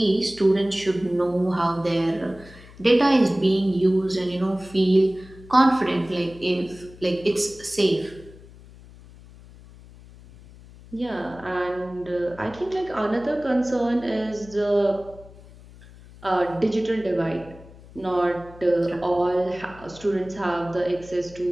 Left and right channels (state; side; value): noise; left; hum, 21 dB below the sound